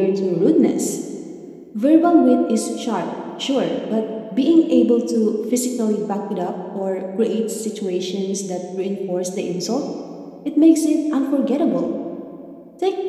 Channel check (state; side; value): identical; both; correlation 1.00